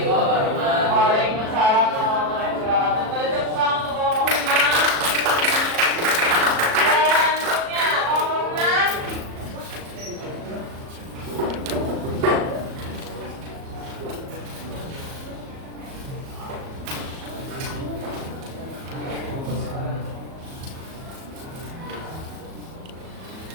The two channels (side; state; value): left; late; 37 ms